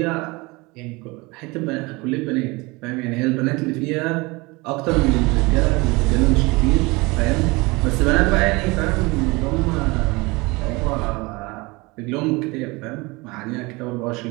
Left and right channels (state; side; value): quieter; left; 24.5 dB